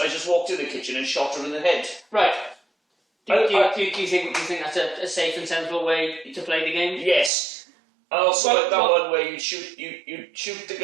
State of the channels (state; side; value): drops out; left; at 7.3 s